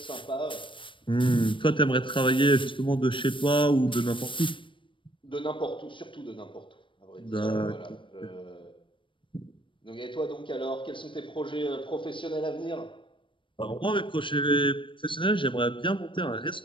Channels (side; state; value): right; late; 0.25 ms